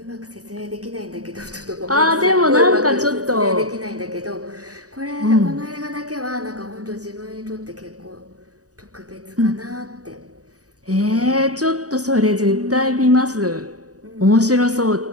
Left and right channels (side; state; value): left; late; 0.67 ms